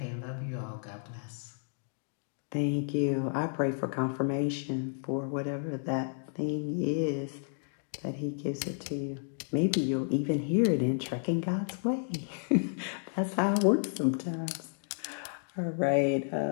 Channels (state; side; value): silent; right; digital silence